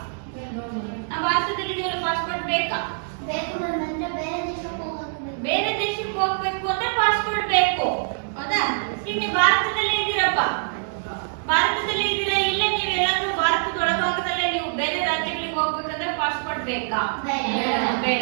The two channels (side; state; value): left; silent; digital silence